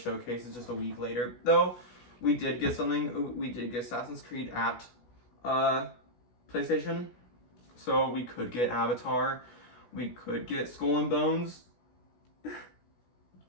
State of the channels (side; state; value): right; late; 16 ms